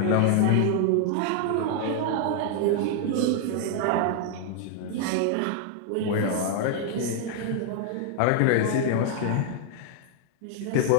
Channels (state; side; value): different; both; correlation 0.00